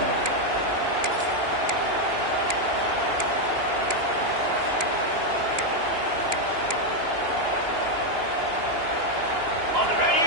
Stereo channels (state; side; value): late; left; 2.9 ms